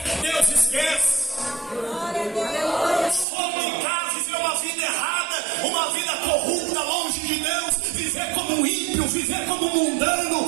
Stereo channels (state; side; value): drops out; left; at 3.2 s